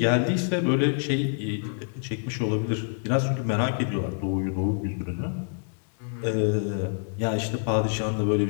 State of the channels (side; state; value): right; silent; digital silence